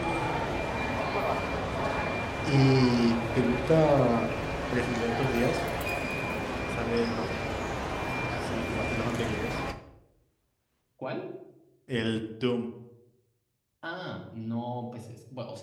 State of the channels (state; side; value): identical; both; correlation 1.00